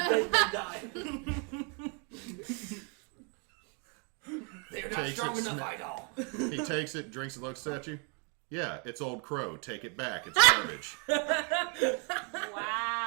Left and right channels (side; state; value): left; quieter; 36.6 dB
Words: They're not Takes strong it, enough, sma- Idall. He takes it, drinks it, looks at you. Yeah, it's Old Crow. Take it back. It's garbage.